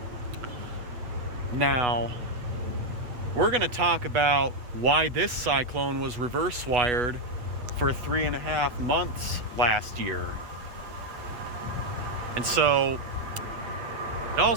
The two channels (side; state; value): left; late; 8.2 ms